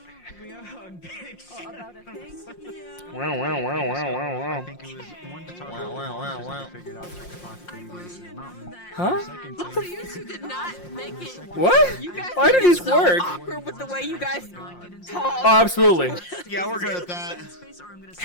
About a thing? Yeah. Wow, wow, wow, wow, wow, wow. I think it was one to talk about the monsters that figured out like the possibilities in the mountain. Huh? Second Also, you two did not make it. What? You guys Why did made it these so work? awkward with the way you guys talk. Oh, absolutely. Yeah, we're good at that.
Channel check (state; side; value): late; right; 5.6 ms